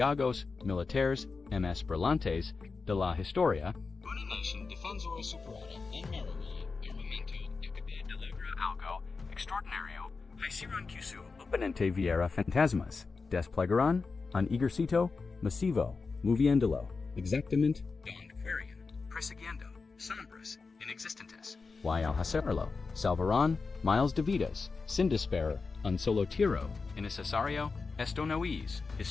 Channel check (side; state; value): right; quieter; 4.4 dB